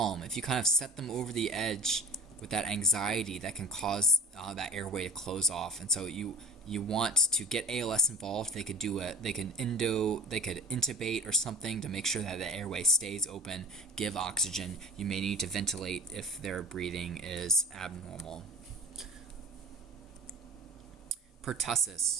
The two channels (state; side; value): normal; both; correlation 0.37